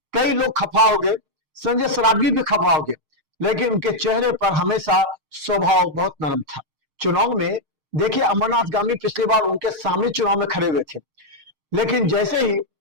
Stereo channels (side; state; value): left; late; 6.5 ms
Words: कई लोग खफा हो गए, संजय सरावगी भी खफा हो गए, लेकिन उनके चेहरे पर हमेशा स्वभाव बहुत नरम था। चुनाव में देखिए, अमरनाथ गांधी पिछली बार उनके सामने चुनाव में खड़े हुए थे, लेकिन जैसे ही